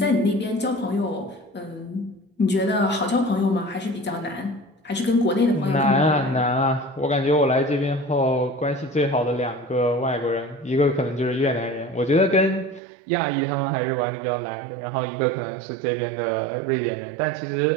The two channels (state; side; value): drops out; left; at 12.8 s